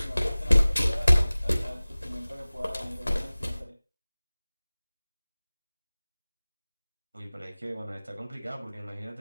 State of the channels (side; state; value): both; inverted; correlation -0.98